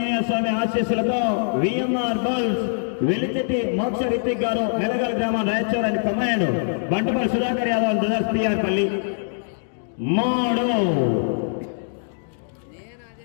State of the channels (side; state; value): right; silent; digital silence